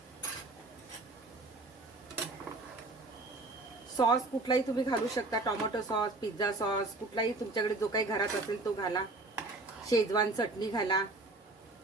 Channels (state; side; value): quieter; left; 3.0 dB